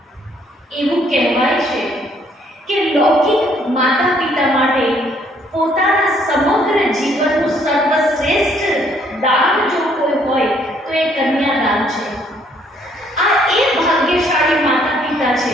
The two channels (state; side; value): normal; both; correlation 0.66